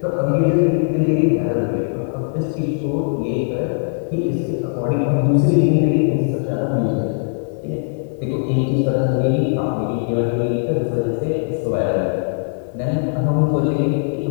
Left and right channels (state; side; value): silent; right; 56 dB below the other